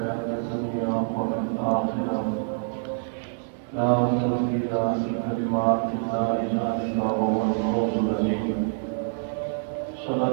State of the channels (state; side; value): silent; left; digital silence